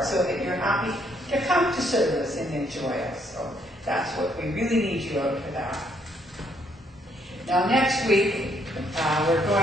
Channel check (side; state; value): both; normal; correlation 0.70